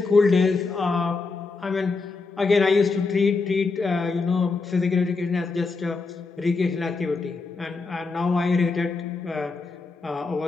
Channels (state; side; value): quieter; right; 4.1 dB